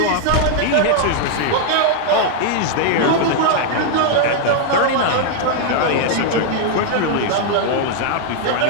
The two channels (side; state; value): both; different; correlation 0.00